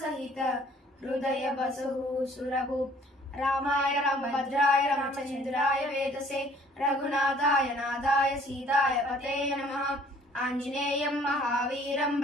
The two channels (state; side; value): normal; both; correlation 0.57